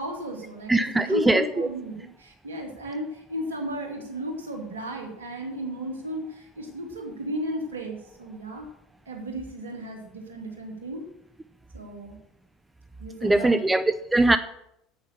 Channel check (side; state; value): both; normal; correlation 0.70